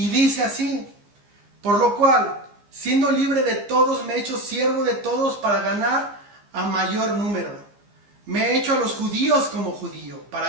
dice así: por lo cual, siendo libre de todos, me he hecho siervo de todos para ganar a mayor número. Me he hecho a los judíos como judío,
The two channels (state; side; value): late; left; 15 ms